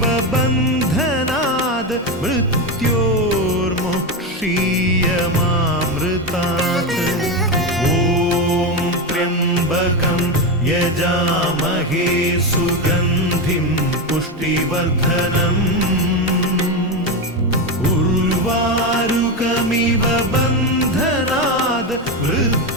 बन्धनाद् मृत्योर्मुक्षीयमामृतात् ॐ त्र्यम्बकं यजामहे सुगन्धिं पुष्टिवर्धनम् उर्वारुकमिव बन्धनाद्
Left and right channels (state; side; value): normal; both; correlation 0.13